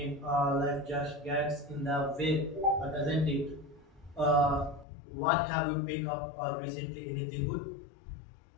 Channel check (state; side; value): drops out; right; at 4.9 s